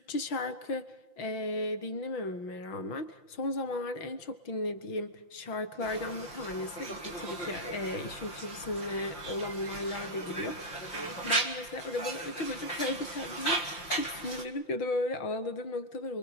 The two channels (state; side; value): late; right; 5.8 ms